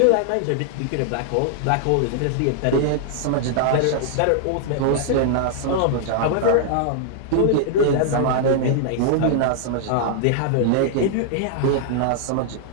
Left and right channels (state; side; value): different; both; correlation -0.01